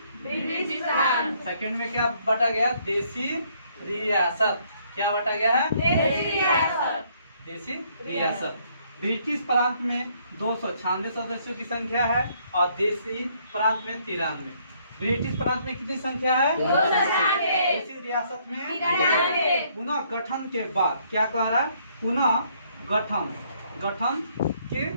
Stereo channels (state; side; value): inverted; both; correlation -0.67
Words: ब्रिटिश प्रांत। सेकंड में क्या बांटा गया? देशी रियासत। क्या बांटा गया है? देशी रियासत। देशी रियासत। ब्रिटिश प्रांत में 296 सदस्यों की संख्या है और देशी प्रांत में 93। ब्रिटिश प्रांत में कितनी संख्या है? 296। देशी रियासत में 93। पुनः गठन के बाद क्या कह रहा है? पुनः गठन के